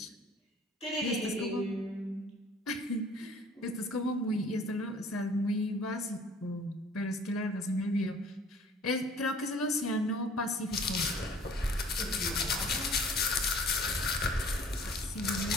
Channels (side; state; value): both; normal; correlation 0.52